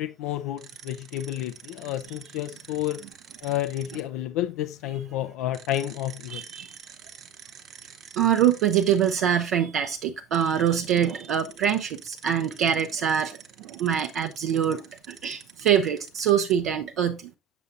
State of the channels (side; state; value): left; quieter; 5.2 dB